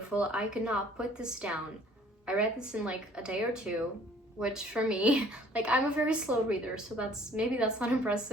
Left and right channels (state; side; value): normal; both; correlation 0.56